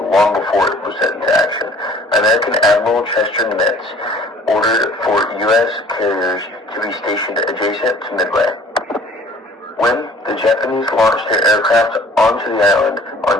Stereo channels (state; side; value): normal; both; correlation 0.52